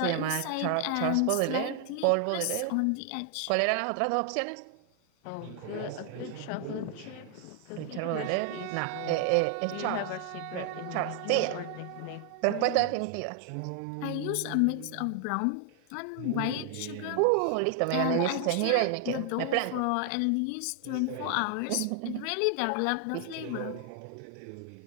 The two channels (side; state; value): both; different; correlation 0.00